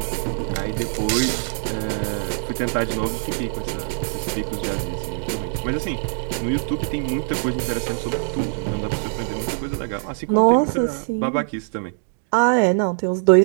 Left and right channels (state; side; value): silent; left; 64 dB below the other